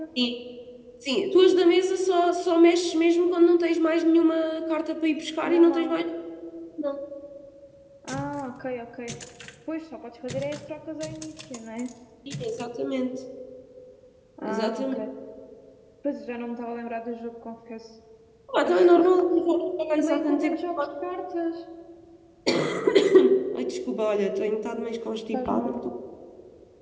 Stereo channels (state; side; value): identical; both; correlation 1.00